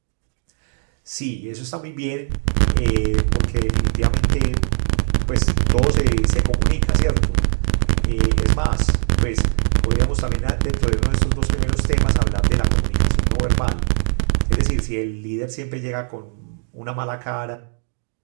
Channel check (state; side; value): silent; left; digital silence